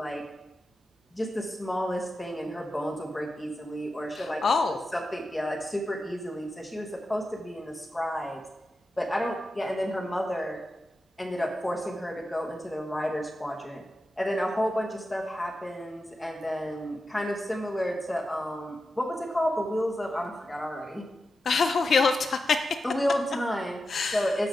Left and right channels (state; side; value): normal; both; correlation 0.90